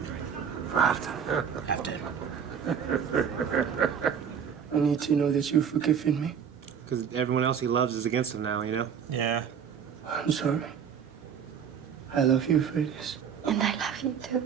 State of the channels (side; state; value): left; quieter; 7.6 dB